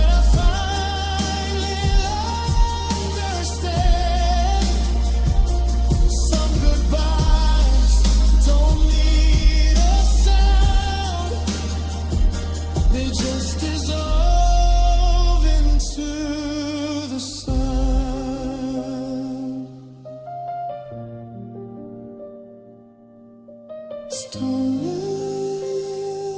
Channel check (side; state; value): both; identical; correlation 1.00